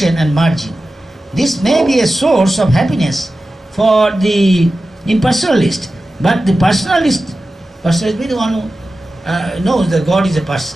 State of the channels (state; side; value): normal; both; correlation 0.94